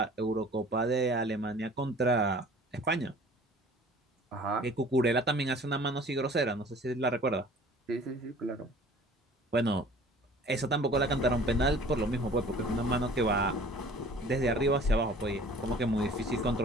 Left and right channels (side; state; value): both; normal; correlation 0.48